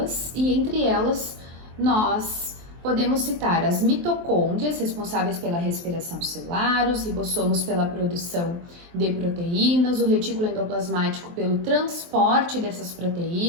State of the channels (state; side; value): late; left; 23 ms